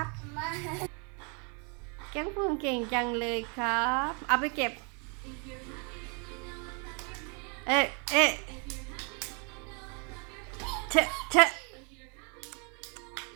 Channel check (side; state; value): left; quieter; 36.2 dB